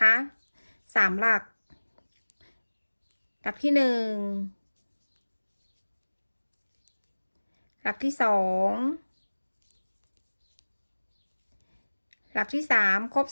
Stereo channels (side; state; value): both; inverted; correlation -1.00